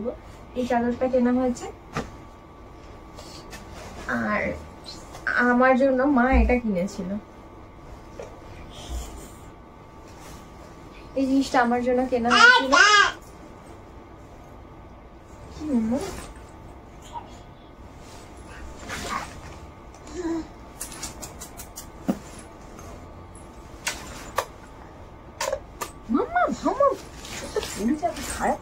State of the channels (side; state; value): both; identical; correlation 1.00